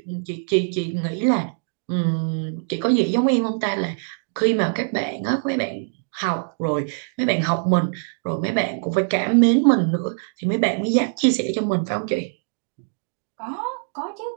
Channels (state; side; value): silent; left; digital silence